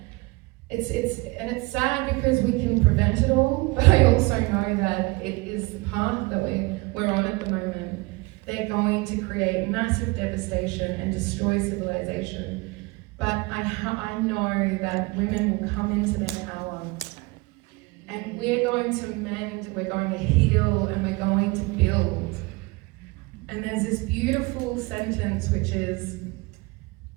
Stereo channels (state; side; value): quieter; left; 24.7 dB